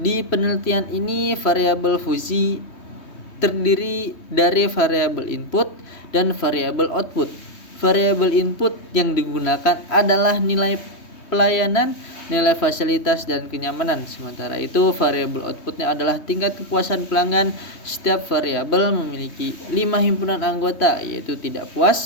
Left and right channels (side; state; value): right; late; 3.2 ms